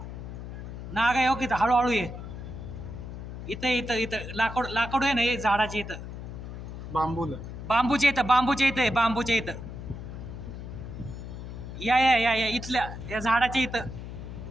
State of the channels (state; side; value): noise; left; hum, 9 dB below the sound